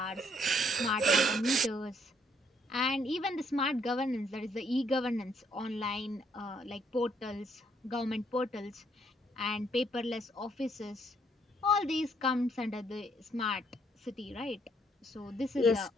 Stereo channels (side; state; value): both; normal; correlation 0.69